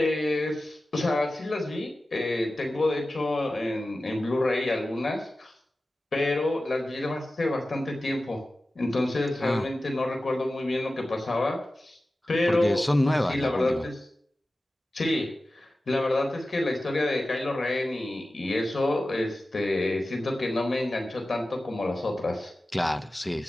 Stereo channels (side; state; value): both; normal; correlation 0.95